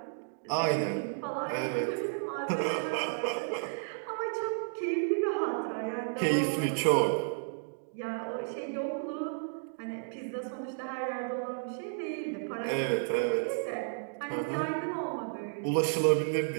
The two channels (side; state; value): left; silent; digital silence